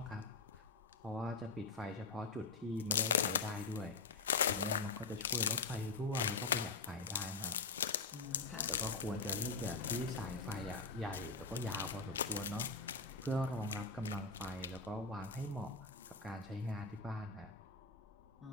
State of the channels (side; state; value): right; quieter; 4.2 dB